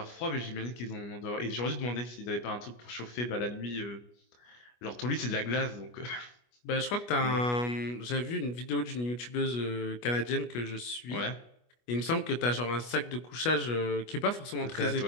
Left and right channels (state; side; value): late; right; 25 ms